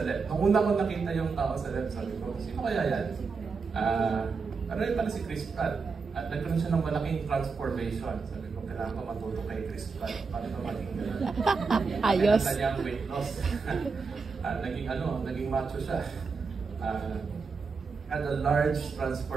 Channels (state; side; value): quieter; left; 4.9 dB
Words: left. Nung una ko nakita yung tao sa left, sabi ko, sino kaya yan? Pero yun pala si Chris Pratt. At nagkaroon siya ng malaking transformation. Sabi ko, kailangan ko matuto kay Chris Pratt. Paano ba maging gano'n? Ayos. Kaya niyang weight loss. Naging macho siya. Had a large